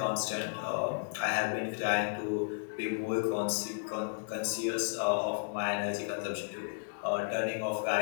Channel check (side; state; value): right; silent; digital silence